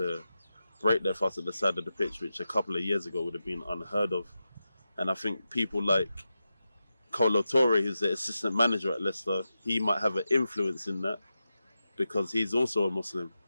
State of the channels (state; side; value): inverted; both; correlation -0.90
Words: break their fast at the side of the pitch, which a couple of years ago would have been unheard of. And I think people like Kolo Toure, who's the assistant manager at Leicester, he might have an influence in that because he's also a Muslim.